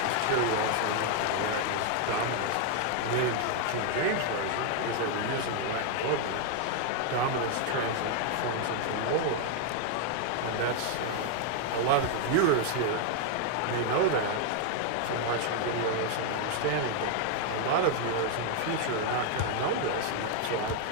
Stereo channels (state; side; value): different; both; correlation 0.00